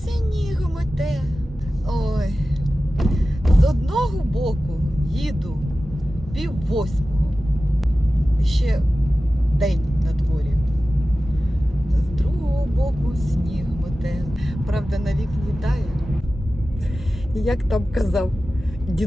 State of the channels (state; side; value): normal; both; correlation 0.95